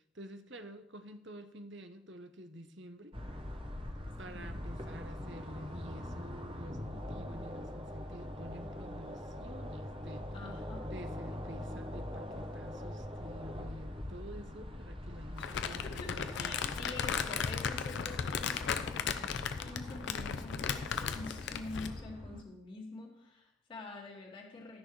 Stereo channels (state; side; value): quieter; right; 3.7 dB